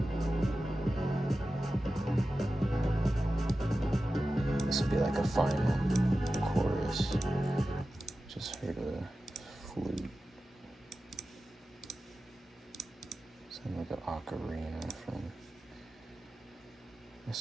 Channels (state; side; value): normal; both; correlation 0.94